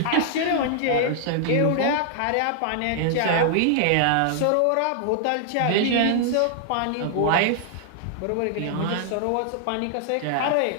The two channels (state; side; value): different; both; correlation -0.01